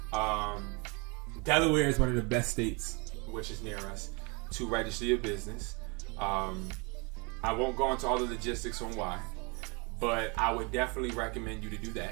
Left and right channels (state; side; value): quieter; left; 30.4 dB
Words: Delaware is one of the best states, which is near us, to register your business. I won't go into all the logistics on why, but I would definitely recommend you to do